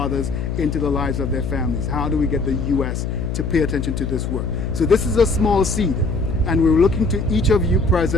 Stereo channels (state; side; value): noise; left; hum, 3 dB below the sound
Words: into the lives of their families? How do we get the U.S. to pay attention to this work? So this is a small seed, and we're looking to each of you